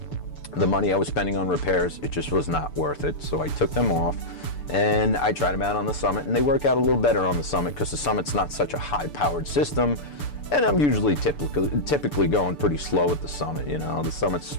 the money I was spending on repairs, it just was not worth it. So I took them off, and I tried them out on the Summit, and they work out a little better on the Summit because the Summit's not such a high-powered system, and I'm usually typically going pretty slow with the Summit. You know, the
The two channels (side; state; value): right; late; 6.9 ms